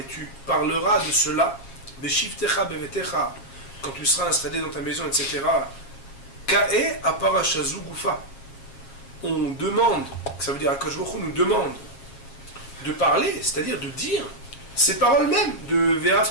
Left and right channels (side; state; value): right; late; 7.4 ms